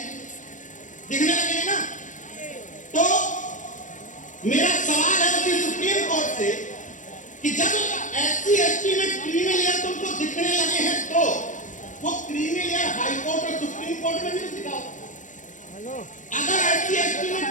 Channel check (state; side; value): late; right; 0.37 ms